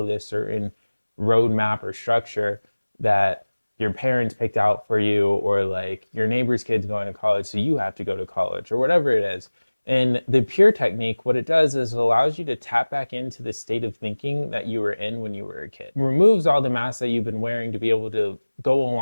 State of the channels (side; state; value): both; inverted; correlation -1.00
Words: this certain roadmap or structure that your parents picked out for you, or like your neighbor's kid's going to college, so you have to go to college, or whatever it is. And the pure technique, what it does is it allows you to tap back into the state of thinking that you were in when you were a kid. It removes all the masks that you've been wearing to be able to go